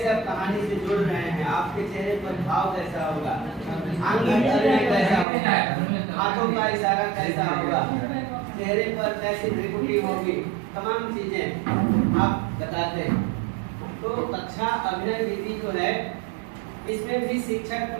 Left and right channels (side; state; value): left; drops out; at 5.2 s